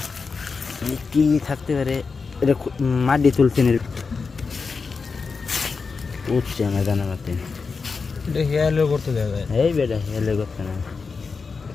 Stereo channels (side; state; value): right; quieter; 4.8 dB